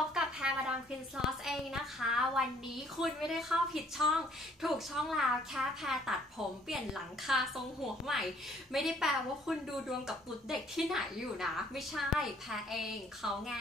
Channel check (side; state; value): both; normal; correlation 0.61